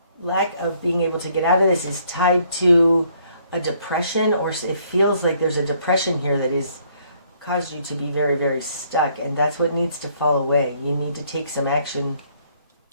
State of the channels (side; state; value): both; inverted; correlation -0.65